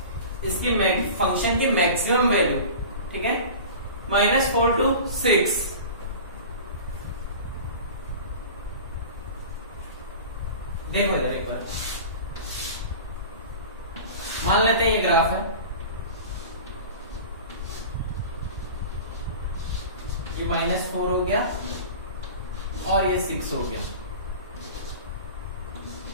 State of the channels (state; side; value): inverted; both; correlation -0.36